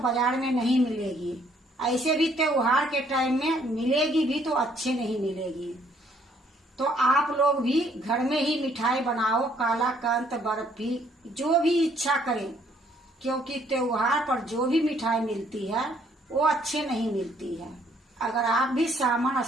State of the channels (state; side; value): normal; both; correlation 0.65